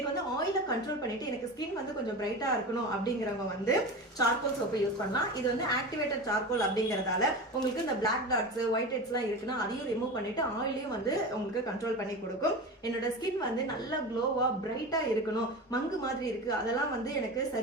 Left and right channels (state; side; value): normal; both; correlation 0.28